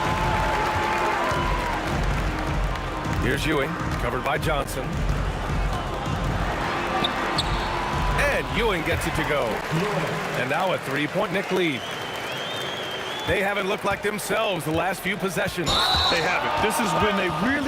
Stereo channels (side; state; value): both; identical; correlation 1.00